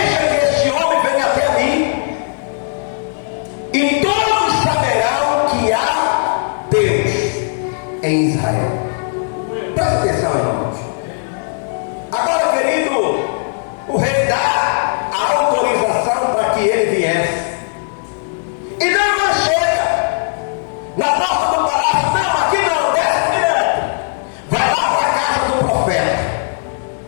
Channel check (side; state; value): right; silent; 65 dB below the other